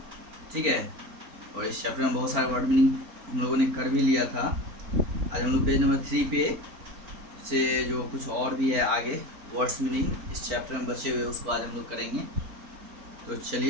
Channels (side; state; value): left; late; 4.4 ms